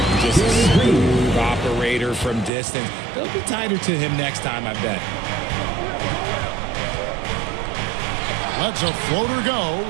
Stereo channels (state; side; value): drops out; left; at 2.5 s